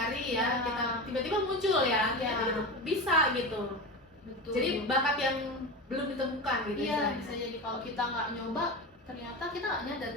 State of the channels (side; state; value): both; normal; correlation 0.24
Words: ya, kita tiba-tiba muncul ya, kita bisa gitu. Betul. Jadi bakat yang belum ditemukan gitu. Iya, bisa jadi kalau kita nggak nyoba, ternyata kita nggak nyadar